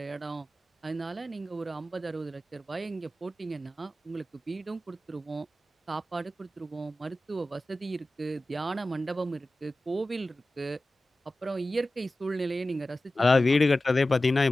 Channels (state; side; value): normal; both; correlation 0.95